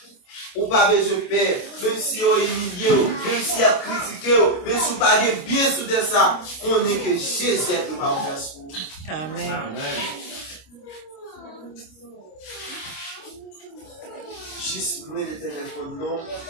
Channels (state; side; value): late; right; 25 ms